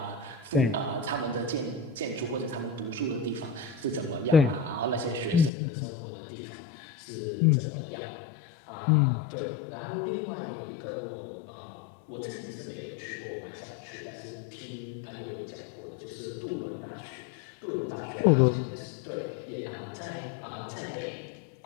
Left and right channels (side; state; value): right; drops out; at 5.5 s